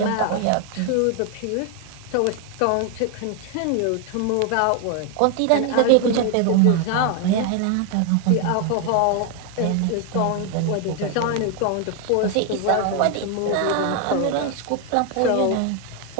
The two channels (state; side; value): different; both; correlation 0.01